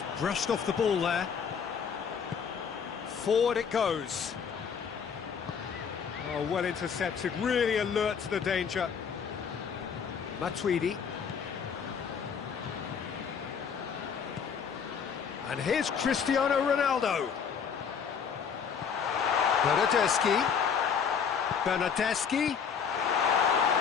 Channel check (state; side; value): quieter; right; 6.8 dB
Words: brushed off the ball there. Forward it goes. Oh, well intercepted, really alert to the danger. Matuidi. And here's Cristiano Ronaldo. Bernardeschi.